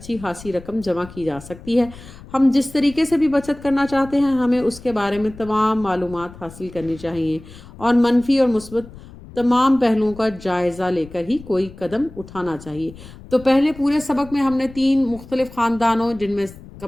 خاصی رقم جمع کی جا سکتی ہے۔ ہم جس طریقے سے بھی بچت کرنا چاہتے ہیں ہمیں اس کے بارے میں تمام معلومات حاصل کرنی چاہیے اور منفی اور مثبت تمام پہلوؤں کا جائزہ لے کر ہی کوئی قدم اٹھانا چاہیے۔ تو پہلے پورے سبق میں ہم نے 3 مختلف خاندانوں، جن میں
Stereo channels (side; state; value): left; noise; rumble, 18 dB below the sound